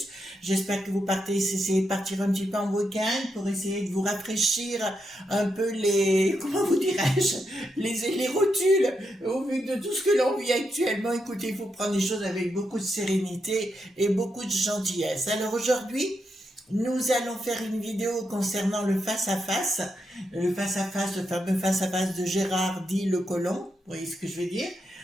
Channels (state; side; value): normal; both; correlation 0.83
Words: J'espère que vous essayez de partir un petit peu en week-end pour essayer de vous rafraîchir un peu comment vous dirais-je, les rotules. Au vu de tout ce que l'on vit actuellement, écoutez, il faut prendre les choses avec beaucoup de sérénité et beaucoup de gentillesse. Alors aujourd'hui, nous allons faire une vidéo concernant le face-à-face, le fameux face-à-face de Gérard dit Le Colon, vous voyez ce que je veux dire.